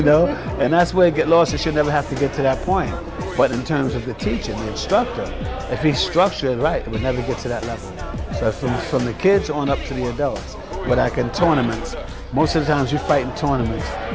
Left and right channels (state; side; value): identical; both; correlation 1.00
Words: know, and that's where it get lost. It should never have to get to that point. But in terms of the teaching, the instructor, if he's structured right, it would never get to that level. So from the kids on up to the adults. But like in tournaments, most of the times you fight in tournaments,